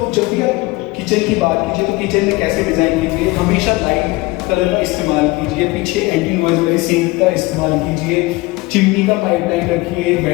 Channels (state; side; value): quieter; right; 22.1 dB